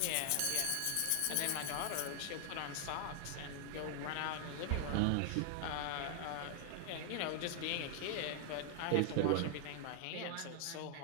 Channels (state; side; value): different; both; correlation 0.00